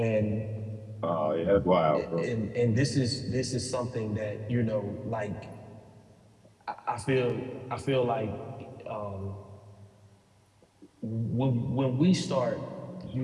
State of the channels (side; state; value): both; identical; correlation 1.00